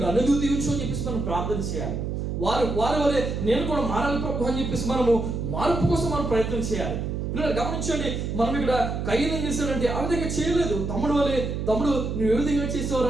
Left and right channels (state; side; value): noise; right; hum, 3 dB below the sound